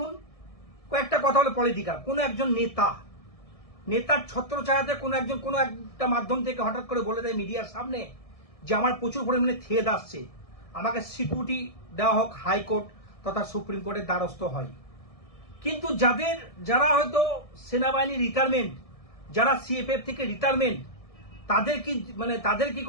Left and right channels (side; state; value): right; late; 1.6 ms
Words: কয়েকটা কথা হলো পলিটিক্যাল, কোনো একজন নেতার ছত্রছায়াতে কোনো একটা মাধ্যম থেকে হঠাৎ করে বলে দেয় মিডিয়ার সামনে যে আমার প্রচুর পরিমাণে থেদ আসছে, আমাকে সিকিউরিটি দেওয়া হোক, হাইকোর্ট তথা সুপ্রিম কোর্টের দ্বারস্থ হয়। কিন্তু যারা হয়তো সেনাবাহিনী রিটায়ারমেন্ট, যারা সিএপিএফ থেকে রিটায়ারমেন্ট, তাদের কি